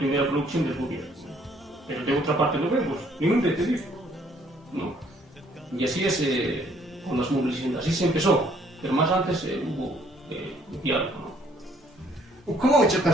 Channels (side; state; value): both; normal; correlation 0.63